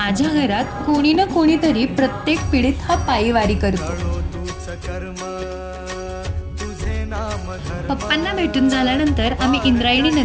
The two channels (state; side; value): identical; both; correlation 1.00